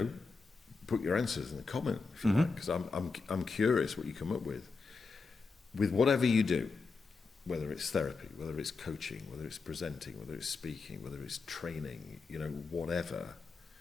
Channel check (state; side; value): quieter; right; 4.4 dB